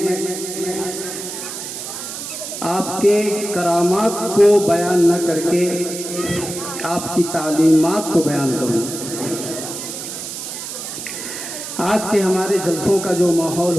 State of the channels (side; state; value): right; noise; hiss, 8 dB below the sound